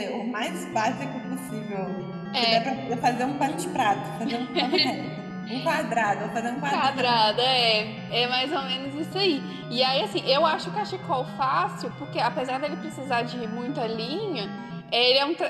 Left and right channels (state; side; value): identical; both; correlation 1.00